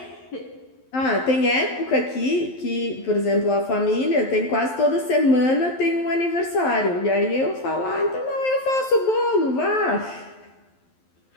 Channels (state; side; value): late; right; 11 ms